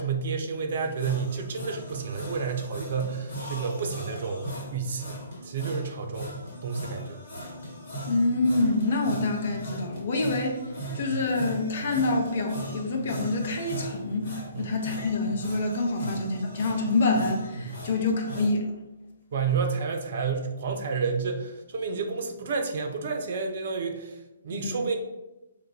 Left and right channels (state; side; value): inverted; both; correlation -0.53